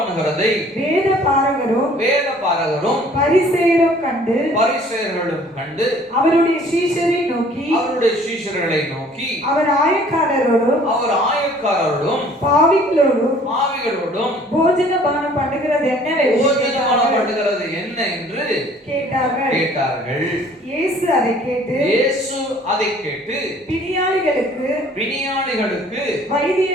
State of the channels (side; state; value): both; normal; correlation 0.54